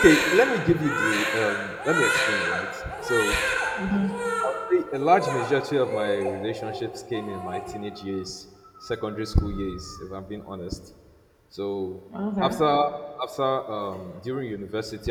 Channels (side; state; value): both; identical; correlation 1.00